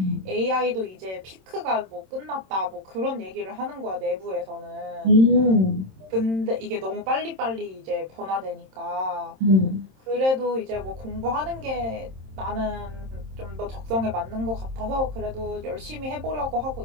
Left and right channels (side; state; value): left; late; 27 ms